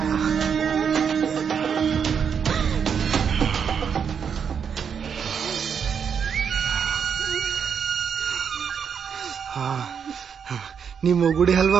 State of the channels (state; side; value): quieter; left; 7.1 dB